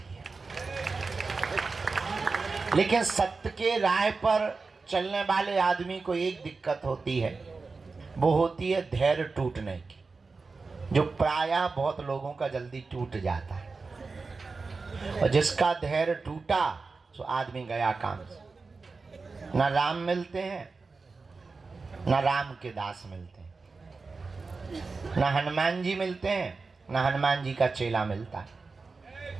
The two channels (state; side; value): quieter; left; 4.2 dB